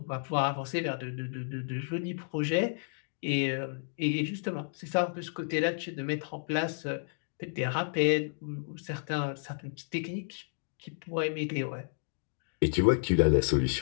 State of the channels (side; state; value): right; silent; digital silence